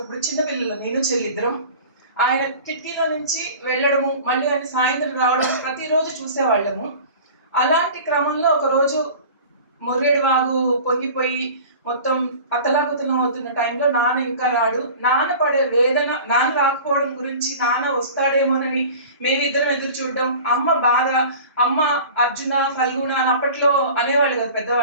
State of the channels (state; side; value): inverted; both; correlation -0.40